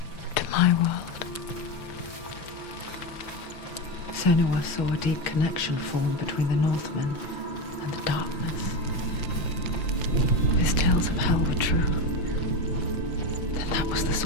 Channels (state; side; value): late; right; 5.9 ms